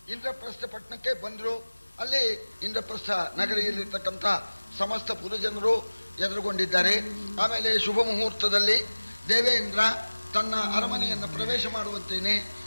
ಇಂದ್ರಪ್ರಸ್ಥ ಪಟ್ಟಣಕ್ಕೆ ಬಂದ್ರು. ಅಲ್ಲಿ ಇಂದ್ರಪ್ರಸ್ಥ ನಗರಿಯಲ್ಲಿರ್ತಕ್ಕಂಥ ಸಮಸ್ತ ಪುರಜನರು ಎದುರುಗೊಂಡಿದ್ದಾರೆ. ಆಮೇಲೆ ಶುಭ ಮುಹೂರ್ತದಲ್ಲಿ ದೇವೇಂದ್ರ ತನ್ನ ಅರಮನೆಯನ್ನು ಪ್ರವೇಶ ಮಾಡುವಂತೇನೆ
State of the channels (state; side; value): inverted; both; correlation -1.00